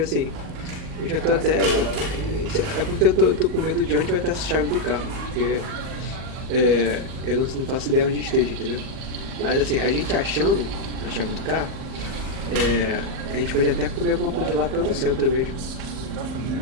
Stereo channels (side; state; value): left; late; 38 ms